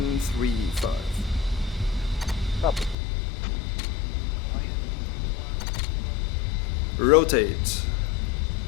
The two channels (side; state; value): right; drops out; at 3.0 s